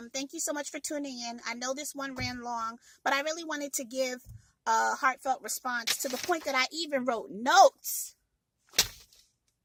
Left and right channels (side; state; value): both; identical; correlation 1.00